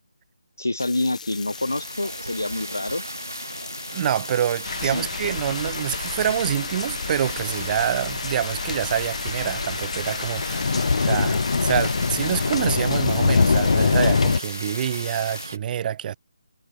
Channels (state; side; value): inverted; both; correlation -0.67